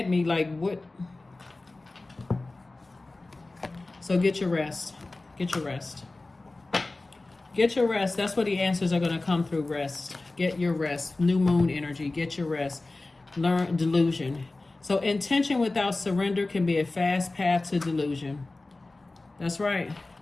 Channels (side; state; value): right; quieter; 3.1 dB